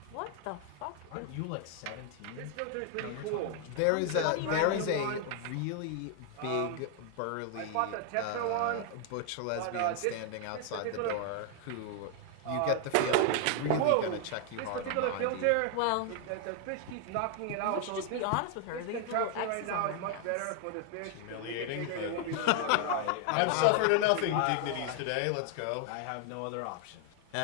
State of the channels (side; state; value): both; different; correlation 0.00